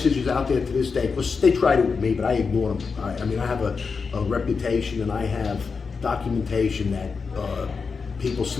out there to this day, because they tried it with me, but I ignore them. I have a reputation, and I have documentation that people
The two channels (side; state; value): right; quieter; 5.1 dB